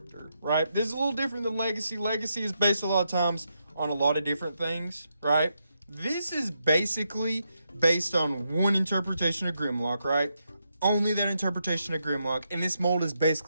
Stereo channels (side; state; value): both; inverted; correlation -0.82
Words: right? This is a little different than Legacy. Legacy is based a lot of times on a lot of different things, right? This is basically based on one interpretation of Grimlock, right? Only that interpretation of Grimlock, and this mold is